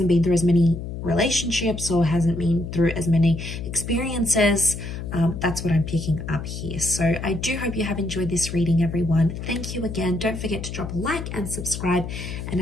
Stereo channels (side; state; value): left; noise; hum, 7 dB below the sound